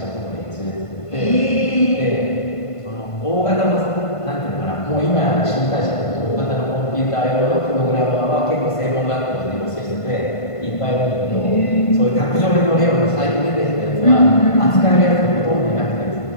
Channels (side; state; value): right; late; 1.5 ms